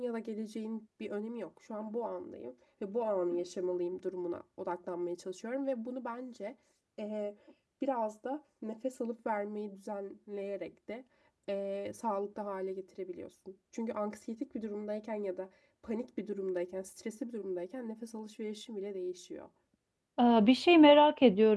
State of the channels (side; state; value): both; identical; correlation 1.00